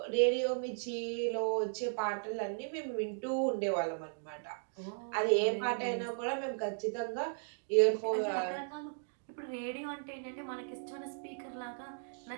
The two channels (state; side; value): silent; left; digital silence